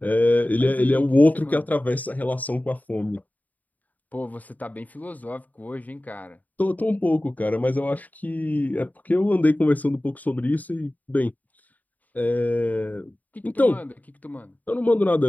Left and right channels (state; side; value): late; right; 0.077 ms